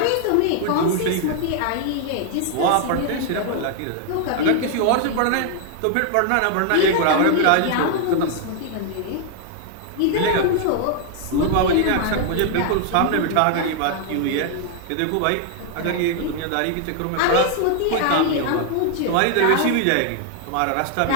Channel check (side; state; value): both; different; correlation 0.00